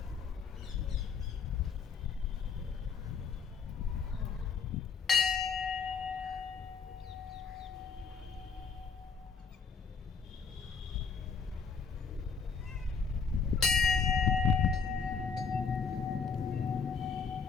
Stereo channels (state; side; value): quieter; right; 5.7 dB